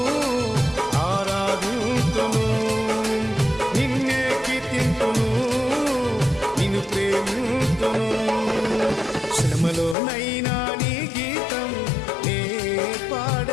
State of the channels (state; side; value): drops out; right; at 10.0 s